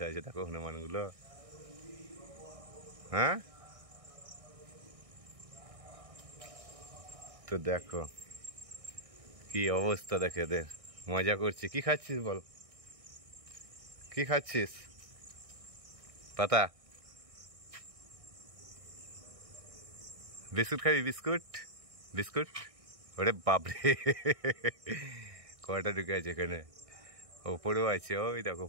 আছে দেখো হনুমানগুলো। হ্যাঁ তো দেখো কি অবস্থা দেখে এদের, মজা করছি। কি খাচ্ছিস বল, কি খাচ্ছিস? পাতা বিস্কুট খাবি? বিস্কুট বিস্কুট ওরে বাপরে কয়টা ঢুকে আছে এখানে, ওপরেও আছে, ওই দেখো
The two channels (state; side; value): late; left; 1.6 ms